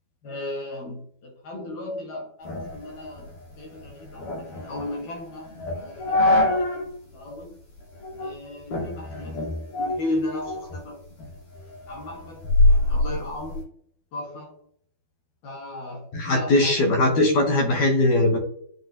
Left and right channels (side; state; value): right; late; 12 ms